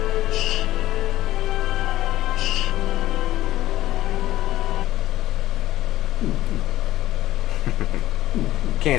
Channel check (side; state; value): right; quieter; 15.0 dB